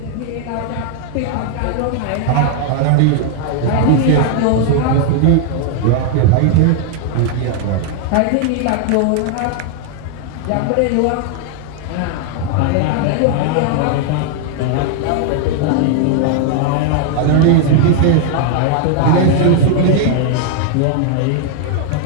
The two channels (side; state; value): both; different; correlation 0.00